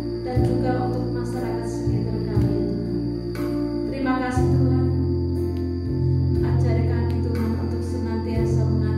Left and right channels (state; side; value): identical; both; correlation 1.00